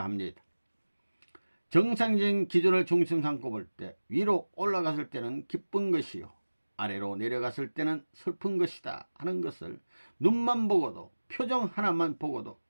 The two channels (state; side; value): inverted; both; correlation -1.00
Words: 합니다. 정상적인 기준을 중심 삼고 볼 때 위로 올라갔을 때는 기쁜 것이요 아래로 내려갔을 때는 슬픈 것이다 하는 것을 눈만 보고도 표정 하나만 보고도